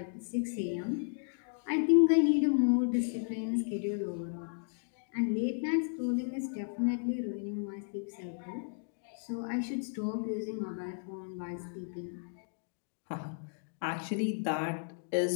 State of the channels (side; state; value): right; silent; digital silence